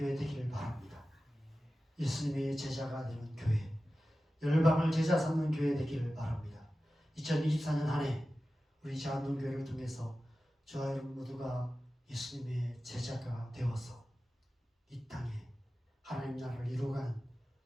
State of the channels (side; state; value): both; normal; correlation 0.95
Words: 되기를 바랍니다. 예수님의 제자가 되는 교회, 열방을 제자 삼는 교회 되기를 바랍니다. 2024년 한 해 우리 자한동교회를 통해서 저와 여러분 모두가 예수님의 제자가 되어서 이 땅에 하나님 나라를 이루어가는